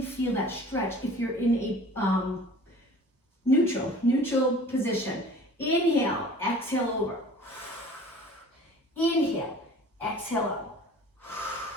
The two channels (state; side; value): normal; both; correlation 0.46